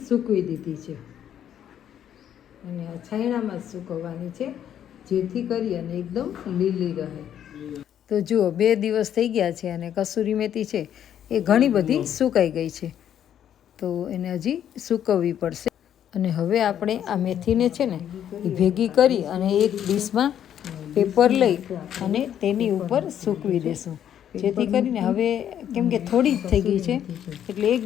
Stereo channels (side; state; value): right; quieter; 10.0 dB